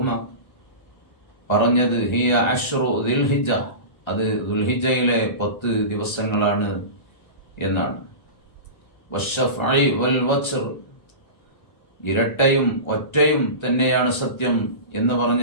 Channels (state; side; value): late; right; 1.3 ms